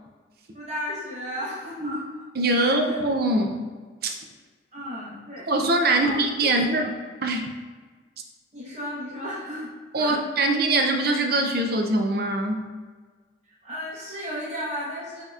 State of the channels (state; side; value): normal; both; correlation 0.20